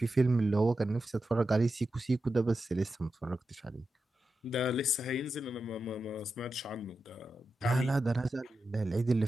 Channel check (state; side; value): normal; both; correlation 0.90